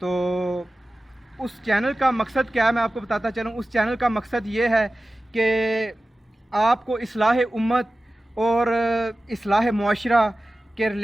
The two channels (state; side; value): normal; both; correlation 0.96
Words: اس چینل کا مقصد کیا ہے میں آپ کو بتاتا چلوں. اس چینل کا مقصد یہ ہے کہ آپ کو اصلاح امت اور اصلاح معاشرہ کے